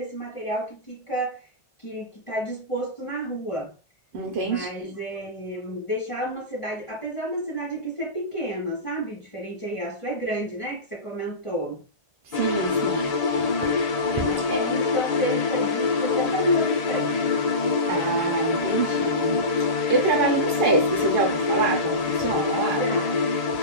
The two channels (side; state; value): right; late; 1.8 ms